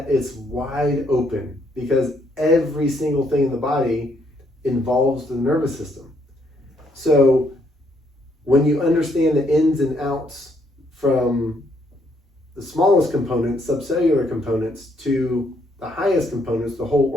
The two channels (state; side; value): normal; both; correlation 0.71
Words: it's wide open, because every single thing in the body involves the nervous system. So when you understand the ins and outs from the smallest components, subcellular components, to the highest components, the whole